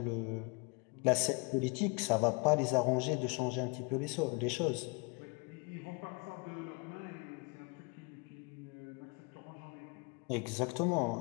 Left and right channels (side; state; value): right; quieter; 32.0 dB